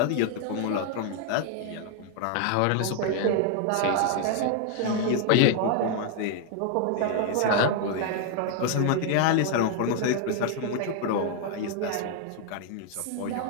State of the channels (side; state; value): both; different; correlation 0.00